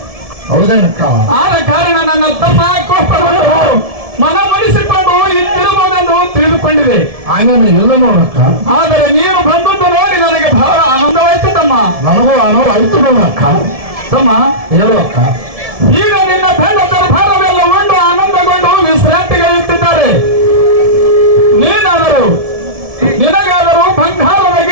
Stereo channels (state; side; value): late; left; 1.7 ms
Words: ಹೌದೇನಕ್ಕ? ಆದ ಕಾರಣ ನನ್ನ ತಮ್ಮ ಕೋಪವನ್ನು ಮನವೊಲಿಸಿಕೊಂಡು ಇತ್ತಿರಬಹುದೆಂದು ತಿಳಿದುಕೊಂಡಿದೆ. ಹಾಗೇನು ಇಲ್ಲ ನೋಡಕ್ಕ. ಆದರೆ ನೀನು ಬಂದದ್ದು ನೋಡಿ ನನಗೆ ಬಹಳ ಆನಂದವಾಯ್ತು ತಮ್ಮ. ನನಗೂ ಆನಂದವಾಯ್ತು ನೋಡಕ್ಕ. ತಮ್ಮ ಹೇಳುವಕ್ಕ, ಈಗ ನಿನ್ನ ಬೆಳ್ಳ ದರ್ಬಾರವೆಲ್ಲ ಉಂಡು ಆನಂದಗೊಂಡು ವಿಶ್ರಾಂತಿಗಳಿಟ್ಟಿದ್ದಾರೆ. ನೀನಾದರೂ ನಿನಗಾದರೂ ಬಂಗಾರದ